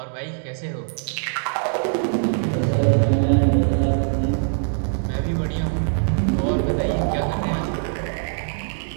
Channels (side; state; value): left; silent; 64 dB below the other